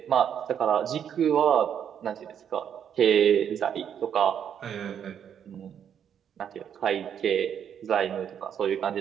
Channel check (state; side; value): quieter; left; 8.7 dB